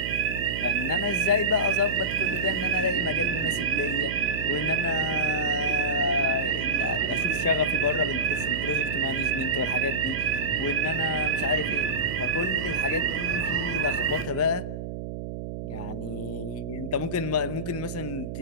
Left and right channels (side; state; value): right; noise; hum, 7 dB below the sound